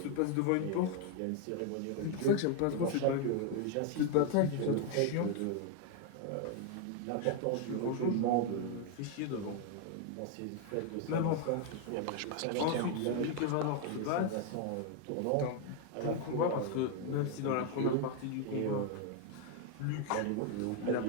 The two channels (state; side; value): different; both; correlation 0.01